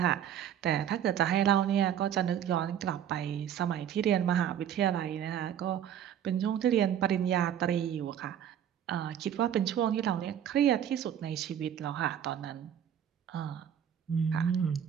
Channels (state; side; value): quieter; left; 9.7 dB